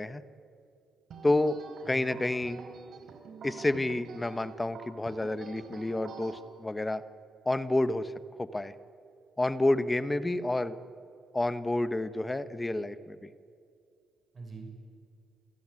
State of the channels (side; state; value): both; normal; correlation 0.97